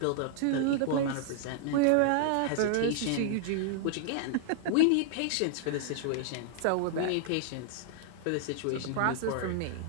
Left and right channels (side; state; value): both; different; correlation -0.01